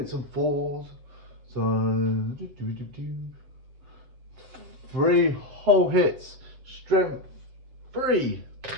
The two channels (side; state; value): left; late; 7.7 ms